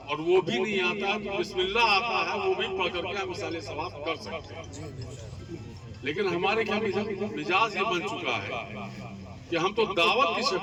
اور وہ بھی نہیں آتا تو بسم اللہ آتا ہے وہ بھی پڑھ کر کے ہم ایصال ثواب کر سکتے ہیں۔ لیکن ہمارے کیا مزاج یہ بن چکا ہے کہ ہم تو دعوت کی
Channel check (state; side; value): identical; both; correlation 1.00